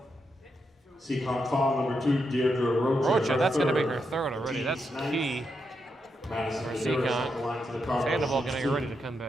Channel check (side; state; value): both; normal; correlation 0.83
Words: Seekonk foul number 2, Deirdre Rocha. That's going to be her 3rd already. That's key for Seekonk. Sandoval going to get ready to come